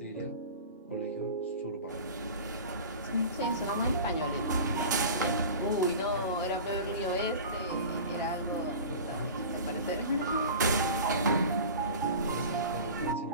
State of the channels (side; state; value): both; inverted; correlation -0.35